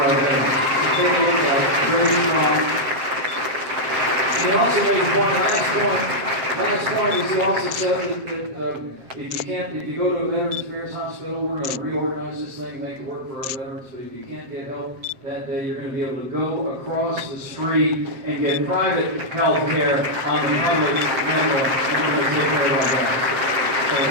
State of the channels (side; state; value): left; late; 7.6 ms